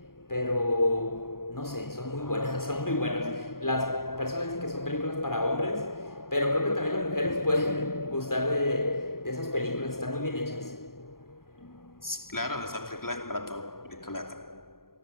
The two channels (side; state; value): right; late; 0.92 ms